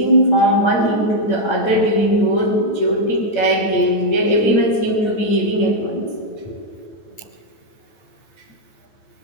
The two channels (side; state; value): right; late; 9.1 ms